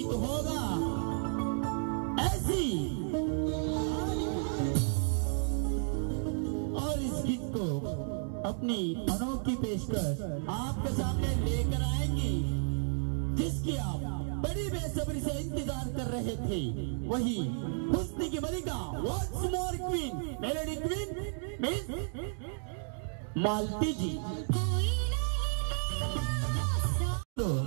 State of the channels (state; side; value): silent; left; 56 dB below the other